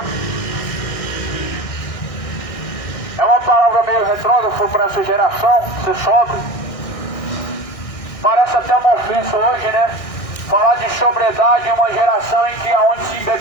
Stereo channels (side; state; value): right; late; 1.6 ms